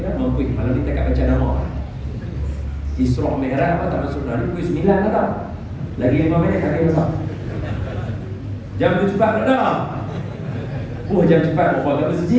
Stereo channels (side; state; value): both; identical; correlation 1.00